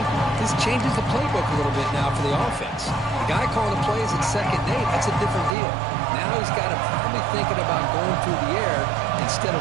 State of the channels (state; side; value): drops out; left; at 5.6 s